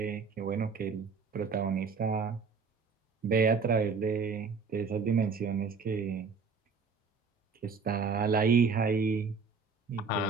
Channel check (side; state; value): left; quieter; 5.1 dB